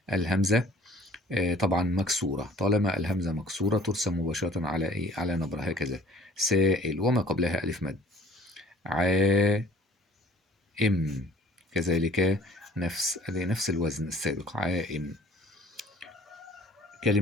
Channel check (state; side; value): normal; both; correlation 0.50